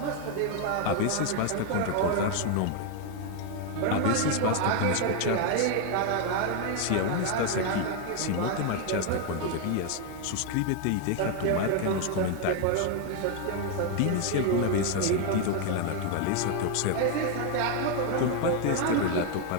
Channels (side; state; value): both; different; correlation 0.01